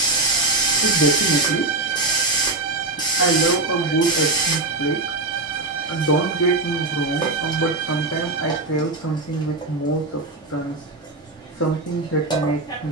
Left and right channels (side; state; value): left; quieter; 3.1 dB